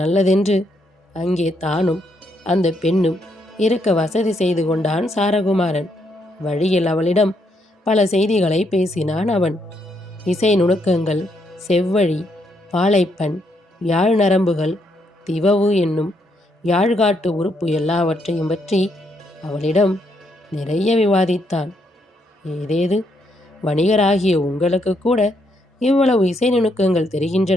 அங்கே தானும் அந்த பெண்ணும் இருக்க வசதி செய்து கொண்டான் சாரகுமாரன். வழியில் அவளிடம் பல செய்திகளை பேசினான் அவன். இசை நுணுக்கங்கள், செவ்வழி, பாலைப்பண், யாழ் நரம்புகள், திவவு என்னும் யாழ்காட்டு உறுப்பு எல்லாவற்றையும் பற்றி அவளிடம் நிறைய விவாதித்தான். ஏதேது, வணிகராகிய உங்களுக்கு கூட இவ்வளவு இசை நுணுக்கங்கள்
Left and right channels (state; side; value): normal; both; correlation 0.76